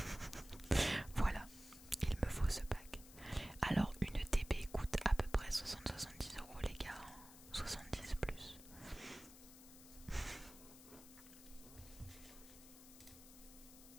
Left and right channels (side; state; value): left; noise; hiss, 17 dB below the sound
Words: Voilà, il me faut ce pack. Alors, une TB coûte à peu près 60-70 € les gars. 70 plus.